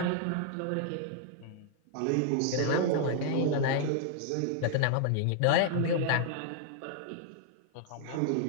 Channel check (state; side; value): different; both; correlation 0.00